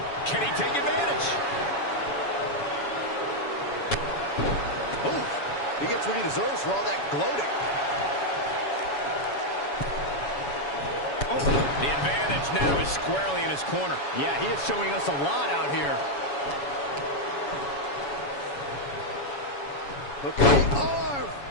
Can he take advantage? Oof. He gets what he deserves for all that gloating. The advantage now is squarely in his corner. Yeah, he is showing us a lot out here. Look at the arm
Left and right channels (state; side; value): late; right; 7.1 ms